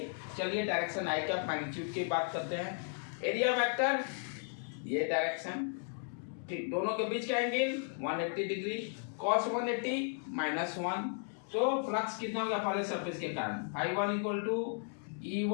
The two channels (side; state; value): right; silent; 54 dB below the other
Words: चलिए डायरेक्शन आई का मैग्नीट्यूड की बात करते हैं। एरिया वेक्टर ये डायरेक्शन, ठीक, दोनों के बीच का एंगल 180 डिग्री, cos 180 -1। तो फ्लक्स कितना होगा पहले सरफेस के कारण, I1 equal to